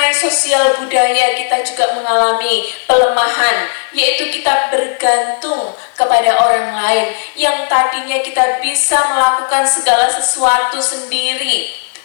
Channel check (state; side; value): silent; right; digital silence